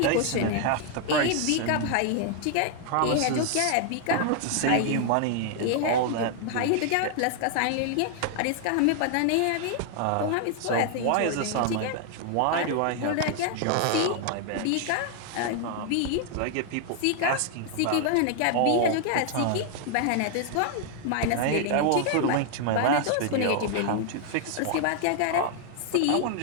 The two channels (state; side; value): different; both; correlation 0.00